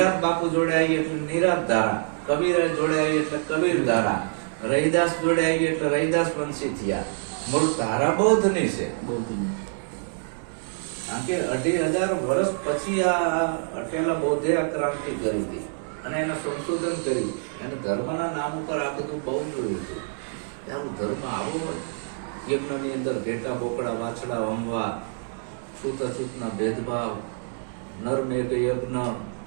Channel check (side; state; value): left; silent; 61 dB below the other